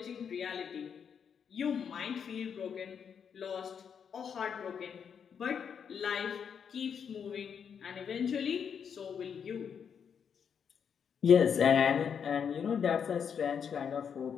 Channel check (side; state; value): right; quieter; 7.3 dB